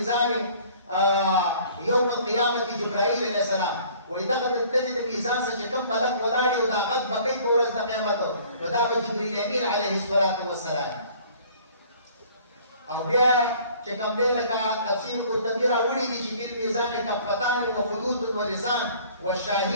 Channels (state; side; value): inverted; both; correlation -0.53